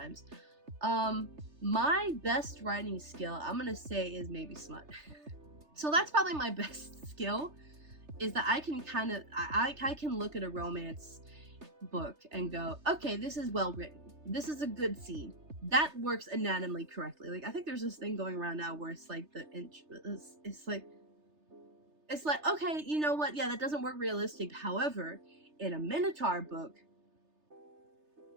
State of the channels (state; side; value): late; left; 3.3 ms